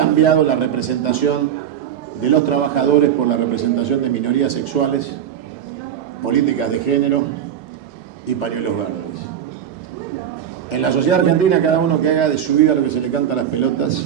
la representación de los trabajadores por la representación de minorías sexuales, políticas de género y pañuelos verdes. En la sociedad argentina, cada uno que haga de su vida lo que se le canta a las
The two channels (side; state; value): left; quieter; 9.5 dB